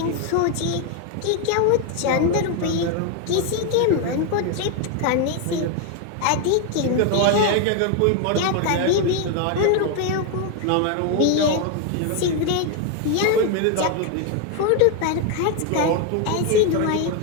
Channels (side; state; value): both; different; correlation 0.01